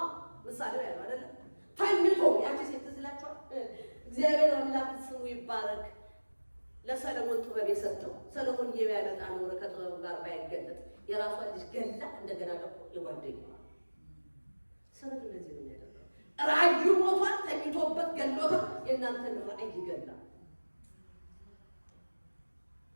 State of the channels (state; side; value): inverted; both; correlation -1.00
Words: ምሳሌው ያለው አይደለም። ተኝቶ ያቺ ሴት ትዝላችኋል። እግዚአብሔር አምላክ ስሙ ይባረክ። ለሰለሞን ጥበብ የሰጠው ሰለሞን የሚያመጣ ኖረ ከጥበቡ ጋር ባይገለጥ የራሷን ልጅ ገላ እንደገና ደግሞ የጓደኛዋ ሰነፍ እንደዚህ ነው የሚያደርገው። ራዕዩ ሞቷል፣ ተኝቶበት ገሎታል። የእናንተን ራዕይ ይገላል፣